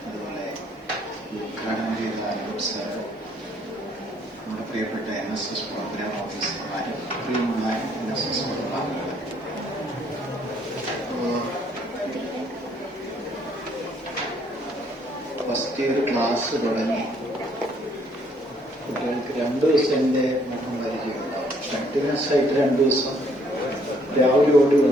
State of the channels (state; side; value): normal; both; correlation 0.65